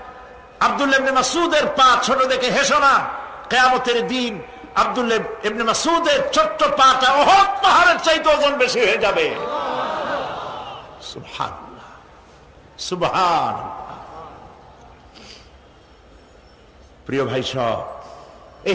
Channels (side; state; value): both; identical; correlation 1.00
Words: আব্দুল্লাহ ইবনে মাসউদের পা ছোট দেখে হেসো না, কিয়ামতের দিন আব্দুল্লাহ ইবনে মাসউদের ছোট্ট পাটা উহুদ পাহাড়ের চাইতে ওজন বেশি হয়ে যাবে। সুবহানাল্লাহ, সুবহানাল্লাহ। প্রিয় ভাই সব,